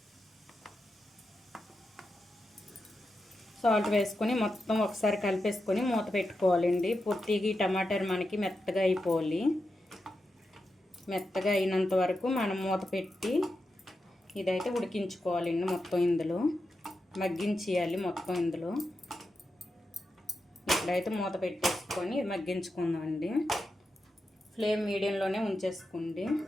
సాల్ట్ వేసుకొని మొత్తం ఒకసారి కలిపేసుకొని మూత పెట్టుకోవాలండి. పూర్తిగా ఈ టమాటాలు మనకి మెత్తగా అయిపోవాలి. మెత్తగా అయినంత వరకు మనం మూత పెట్టి ఇదైతే ఉడికించుకోవాలండి. మొత్తం ఇందులో మగ్గించేయాలి. మొత్తం ఇందులో ఇప్పుడైతే మూత పెట్టేసుకొని మగ్గించుకుందామండి. ఫ్లేమ్ మీడియంలోనే ఉంచేసుకోండి.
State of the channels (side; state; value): both; normal; correlation 0.88